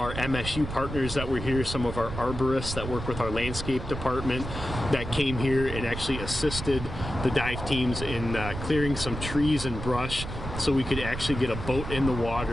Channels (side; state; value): right; noise; rumble, 7 dB below the sound